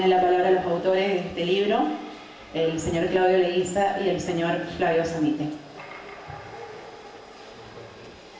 la palabra los autores de este libro, el señor Claudio Leguiza y el señor Flavio Samite.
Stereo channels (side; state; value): both; identical; correlation 1.00